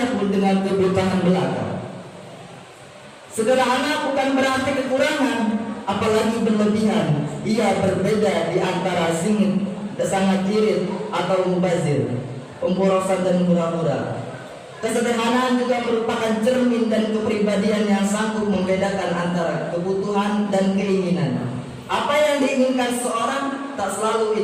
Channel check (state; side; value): identical; both; correlation 1.00